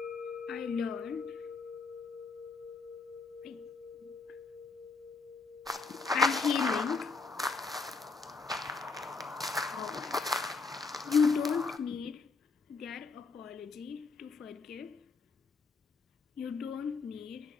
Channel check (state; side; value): quieter; right; 4.2 dB